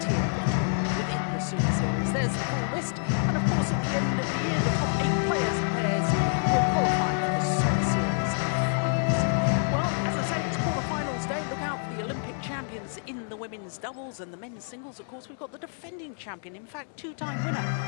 of tournament within the Super Series. There's the full list, and of course at the end of the year the top 8 players and pairs will qualify for the Super Series Finals. Well, as I say, it's quarterfinals day. Look out for the Olympic champions in the women's doubles and the men's singles. Of course, we've got the defending champion, in fact, two-time winner,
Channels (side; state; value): right; silent; digital silence